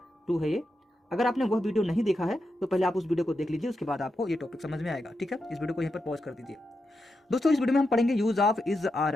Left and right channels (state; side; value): normal; both; correlation 0.87